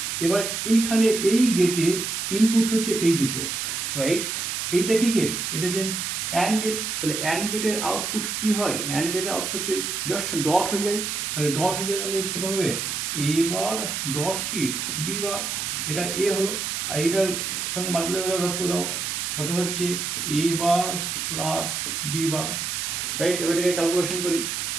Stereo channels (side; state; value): right; noise; hiss, 2 dB below the sound